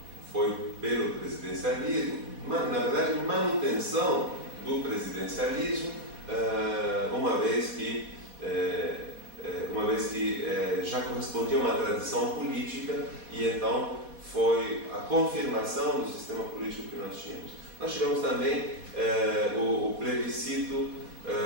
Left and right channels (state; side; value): late; left; 4.1 ms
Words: foi pelo presidencialismo, na verdade manutenção do presidencialismo, uma vez que já correspondia a uma tradição política e então foi a confirmação do sistema político que nós tínhamos. Nós tivemos também o plebiscito